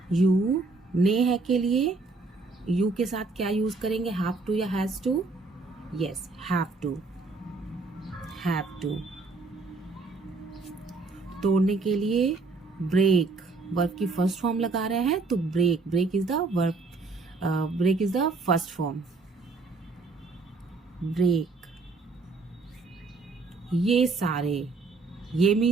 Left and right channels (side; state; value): left; quieter; 3.8 dB